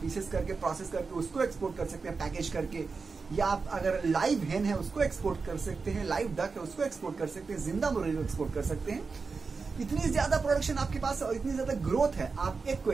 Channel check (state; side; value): quieter; left; 4.6 dB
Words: पीसेस करके प्रोसेस करके उसको एक्सपोर्ट कर सकते हैं पैकेज करके, या आप अगर लाइव हेन है उसको एक्सपोर्ट कर सकते हैं, लाइव डक है उसको एक्सपोर्ट कर सकते हैं, जिंदा मुर्गी को एक्सपोर्ट कर सकते हैं। इतनी ज्यादा प्रोडक्शन आपके पास और इतनी ज्यादा ग्रोथ है, आप एग को